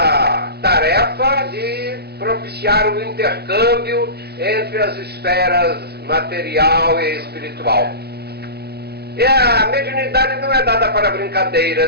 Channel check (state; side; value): late; left; 0.47 ms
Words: tarefa de propiciar o intercâmbio entre as esferas material e espiritual. E a mediunidade não é dada para